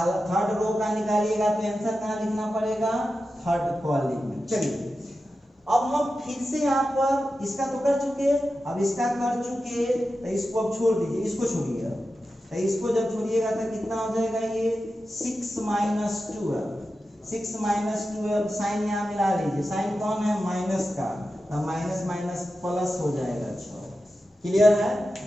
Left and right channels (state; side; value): normal; both; correlation 0.92